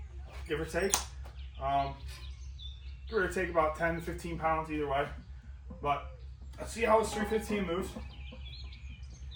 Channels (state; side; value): identical; both; correlation 1.00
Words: give or take. Give or take about 10 to 15 pounds either way. But let's see how this 315 moves.